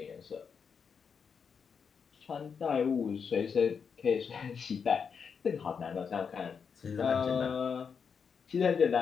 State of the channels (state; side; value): quieter; right; 6.3 dB